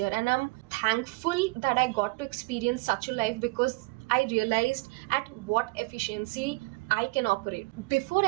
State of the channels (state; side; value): quieter; left; 25.7 dB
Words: And I'm thankful that I got to experience such a life, because I realized at what efficiency I can operate. Before